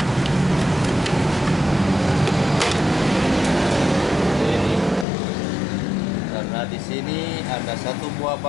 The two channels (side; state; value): right; drops out; at 5.1 s